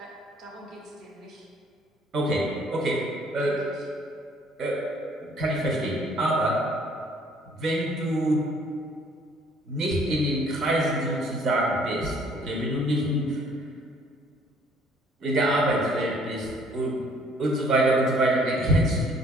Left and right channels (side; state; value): both; normal; correlation 0.60